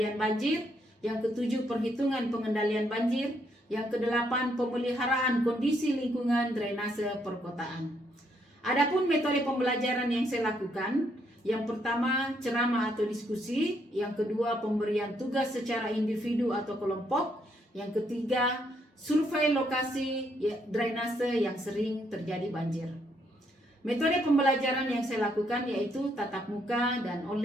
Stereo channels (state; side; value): normal; both; correlation 0.73